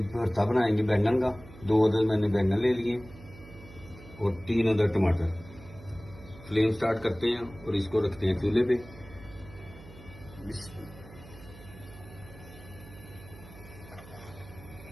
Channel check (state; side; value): noise; right; hum, 18 dB below the sound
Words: भरता बनाएंगे बैंगन का। 2 अदद मैंने बैंगन ले लिए और 3 अदद टमाटर। फ्लेम स्टार्ट करते हैं और इसको रखते हैं चूल्हे पे।